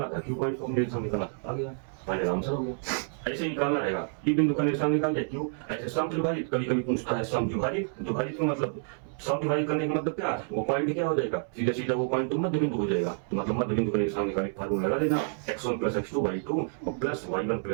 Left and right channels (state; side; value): silent; left; 59 dB below the other